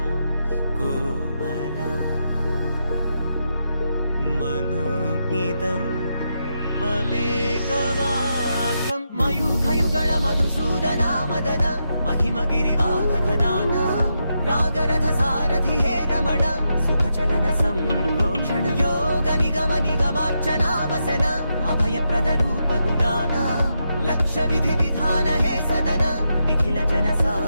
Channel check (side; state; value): both; inverted; correlation -0.84